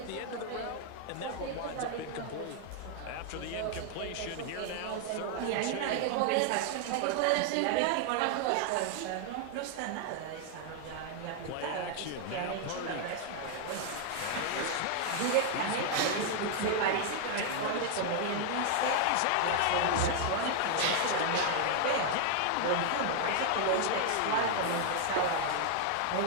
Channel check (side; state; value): both; different; correlation 0.00